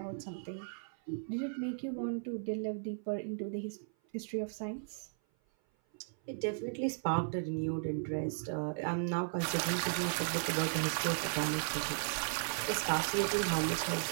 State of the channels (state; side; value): silent; left; 54 dB below the other